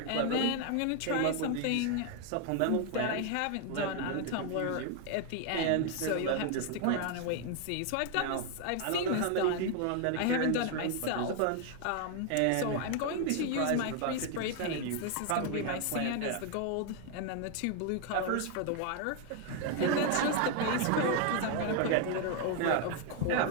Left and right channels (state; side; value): different; both; correlation 0.01